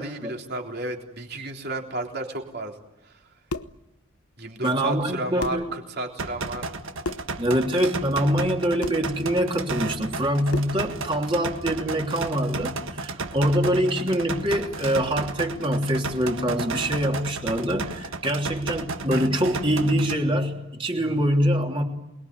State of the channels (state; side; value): normal; both; correlation 0.60